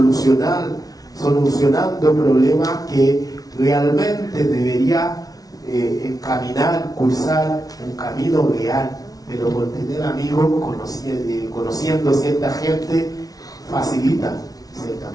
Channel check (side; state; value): right; late; 0.18 ms